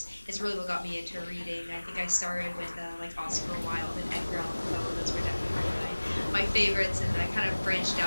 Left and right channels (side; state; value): both; inverted; correlation -1.00